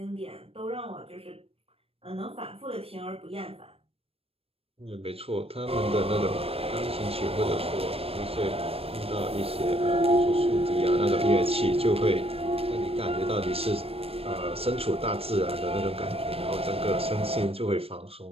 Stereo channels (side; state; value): left; late; 0.28 ms